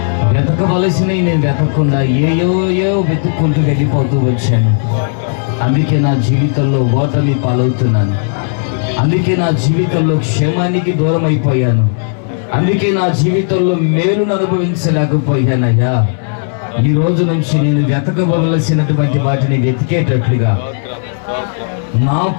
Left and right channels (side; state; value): right; silent; digital silence